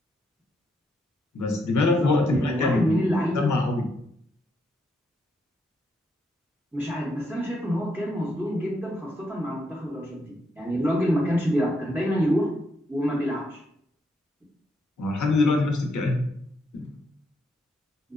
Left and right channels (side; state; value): both; normal; correlation 0.77